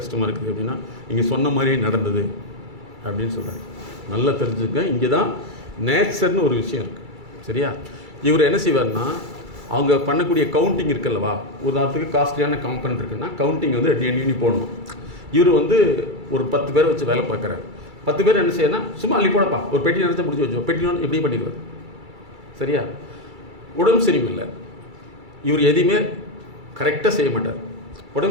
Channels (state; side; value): late; left; 2.3 ms